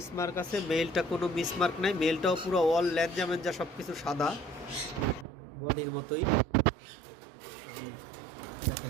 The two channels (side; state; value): left; drops out; at 5.2 s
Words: আছে, মেলটা কোনো মিসমার্ক নাই। মেলটাও পুরো অল ল্যাঞ্জা ম্যাঞ্জা সব কিছু সাদা, বডির মতোই। আমি